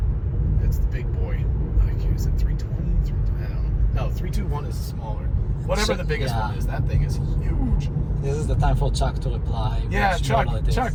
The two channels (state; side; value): identical; both; correlation 1.00